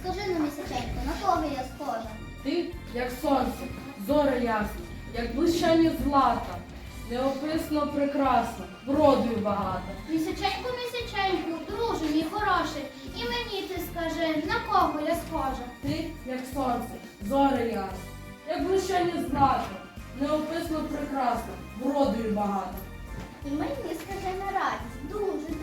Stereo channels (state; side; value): identical; both; correlation 1.00